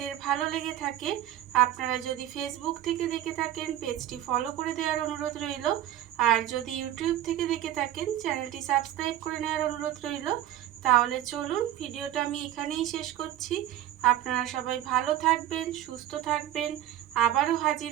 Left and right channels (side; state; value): left; quieter; 12.7 dB